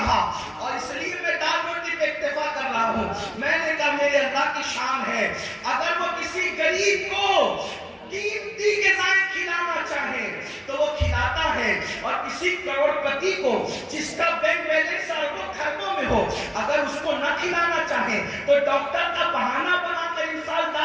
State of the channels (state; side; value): identical; both; correlation 1.00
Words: اور اس لیے میں دال روٹی پہ اکتفا کر رہا ہوں. میں نے کہا میرے اللہ کی شان ہے اگر وہ کسی غریب کو قیمتی غذائیں کھلانا چاہے تو وہ کھلاتا ہے, اور کسی کروڑپتی کو جس کا بینک بیلنس اربوں خربوں میں ہو اگر اس کو نہ کھلانا چاہے تو ڈاکٹر کا بہانہ بنا کر انسان